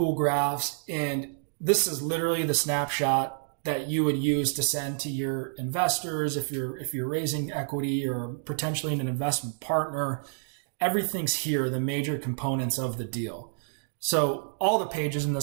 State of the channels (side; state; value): left; silent; digital silence